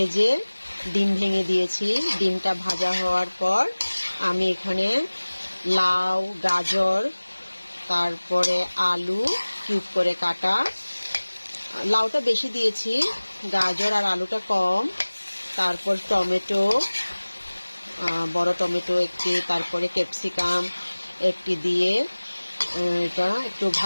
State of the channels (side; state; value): both; inverted; correlation -1.00